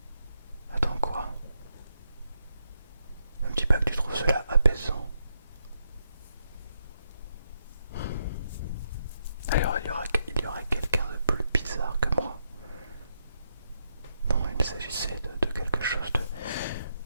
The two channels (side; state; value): both; inverted; correlation -0.80